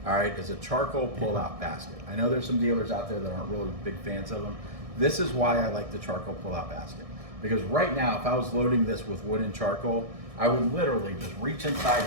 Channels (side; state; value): left; late; 1.6 ms